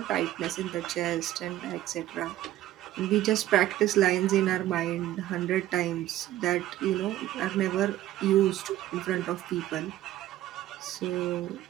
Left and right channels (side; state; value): left; quieter; 14.0 dB